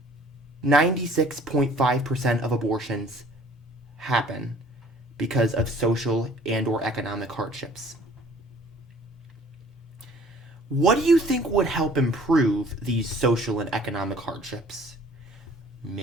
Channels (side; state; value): both; normal; correlation 0.53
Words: 96.5% of abortions happen because of social and or economic hardships. What do you think would help improve these social and economic hardships?